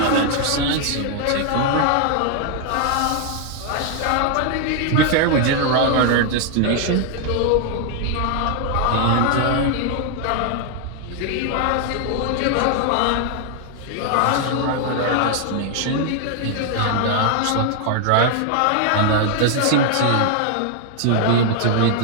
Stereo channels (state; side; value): different; both; correlation 0.00